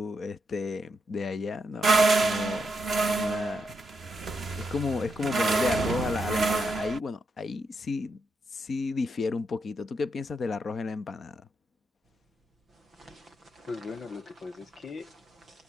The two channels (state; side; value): normal; both; correlation 0.82